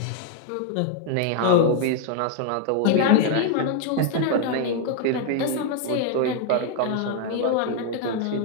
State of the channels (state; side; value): different; both; correlation 0.00